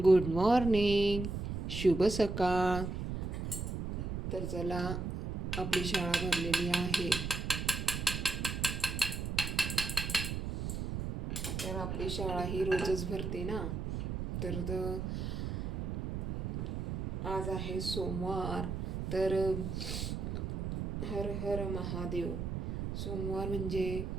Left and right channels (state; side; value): noise; right; rumble, 3 dB below the sound